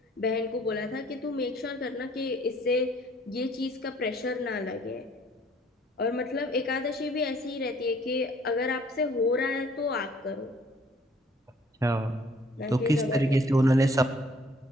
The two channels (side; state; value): both; normal; correlation 0.59